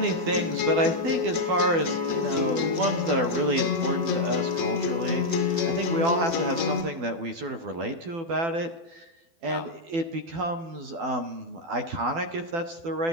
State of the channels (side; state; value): left; late; 12 ms